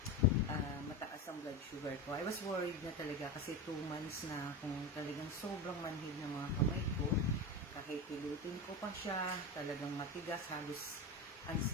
mataas ang blood sugar ko. I was worried na talaga kasi 2 months na kung talagang sobrang manhid ng mga kamay ko. Kahit pilutin ko pa siya, talagang matigas, halos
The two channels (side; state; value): both; normal; correlation 0.21